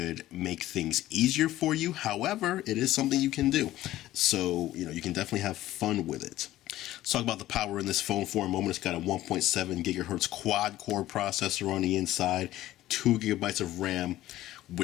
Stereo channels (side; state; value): right; quieter; 14.9 dB